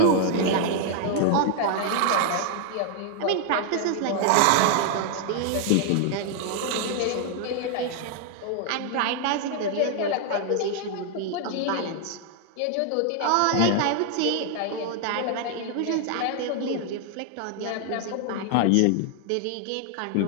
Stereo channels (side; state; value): both; different; correlation 0.00